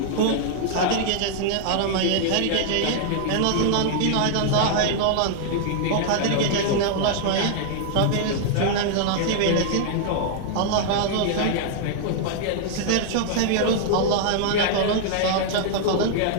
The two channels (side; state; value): both; different; correlation -0.01